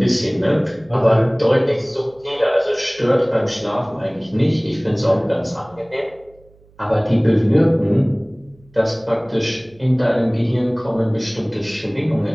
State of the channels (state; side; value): noise; right; hum, 29 dB below the sound